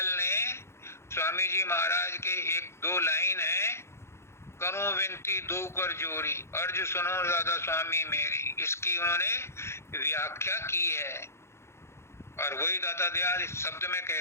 ने, स्वामी जी महाराज के एक दो लाइन है, करूं विनती दो कर जोरी, अर्ज सुनो दादा स्वामी मेरी, इसकी उन्होंने व्याख्या की है। और वही दादा दयाल इस शब्द में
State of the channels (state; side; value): late; right; 0.13 ms